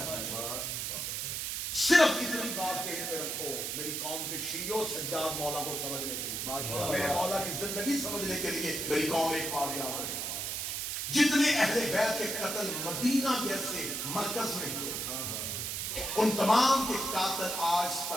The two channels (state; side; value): noise; right; hiss, 2 dB below the sound